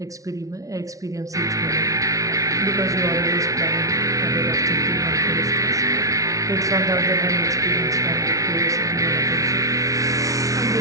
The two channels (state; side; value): late; left; 0.17 ms